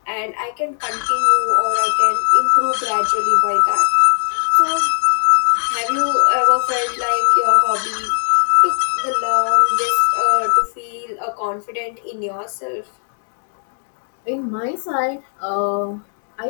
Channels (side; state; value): right; silent; 67 dB below the other